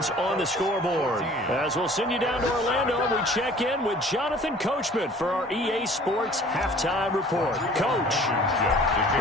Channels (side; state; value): both; normal; correlation 0.50